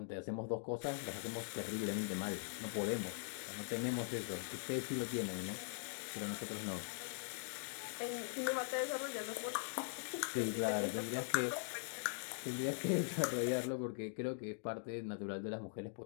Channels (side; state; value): right; silent; digital silence